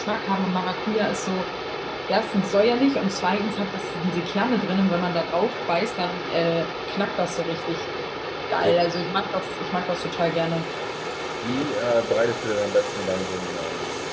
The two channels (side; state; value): both; identical; correlation 1.00